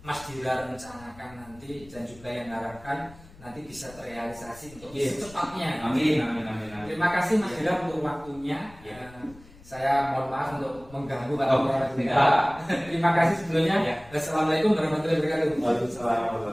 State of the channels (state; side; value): noise; left; rumble, 22 dB below the sound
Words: Mas Dira rencanakan nanti dan juga yang harapkan nanti bisa terrealisasi untuk Yes. secepatnya. Amin, amin, amin, amin. Terima kasih Mas Dira untuk waktunya. Ya. Saya mohon maaf untuk mengganggu Pak. Oh, Terima kasih sebelumnya. Ya. Assalamualaikum warahmatullahi wabarakatuh. Waalaikumsalam